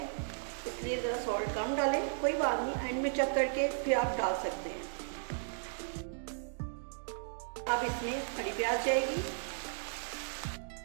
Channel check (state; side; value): silent; left; digital silence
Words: इसलिए ज़रा सॉल्ट कम डालें, कोई बात नहीं, एंड में चेक करके फिर आप डाल सकते हैं। अब इसमें हरी प्याज जाएगी।